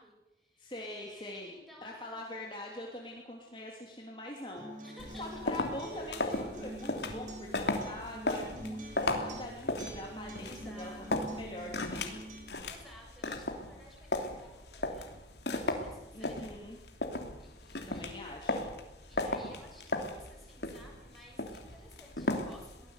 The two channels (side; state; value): both; normal; correlation -0.04